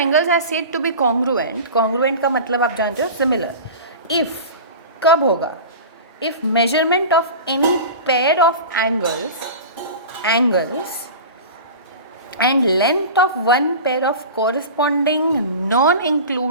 are said to be congruent. Congruent का मतलब आप जानते हो सिमिलर। इफ़, कब होगा? If measurement of any pair of angles and length of one pair of corresponding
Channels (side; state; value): both; inverted; correlation -0.33